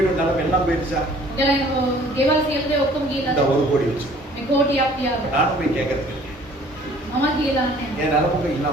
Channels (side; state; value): both; normal; correlation 0.54